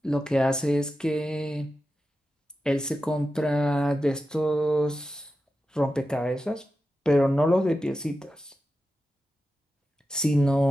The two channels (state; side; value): normal; both; correlation 0.91